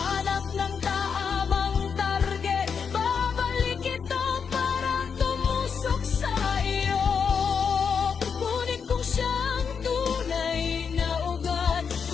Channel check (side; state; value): right; quieter; 6.3 dB